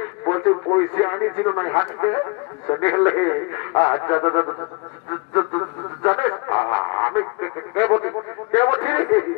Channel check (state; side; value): quieter; right; 29.8 dB